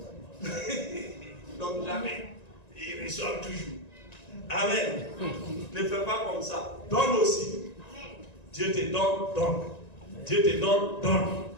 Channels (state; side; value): late; right; 1.9 ms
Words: Donc jamais. Ils reçoivent toujours. Amen. Ne fais pas comme ça. Donne aussi. Dieu te donne, donne. Dieu te donne, donne.